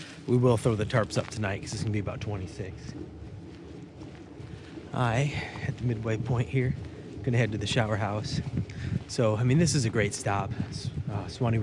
We will throw the tarps up tonight because it's gonna be about 26. At the midway point here, gonna head to the shower house. So, I mean, this is a great stop. Suwannee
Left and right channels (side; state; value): both; identical; correlation 1.00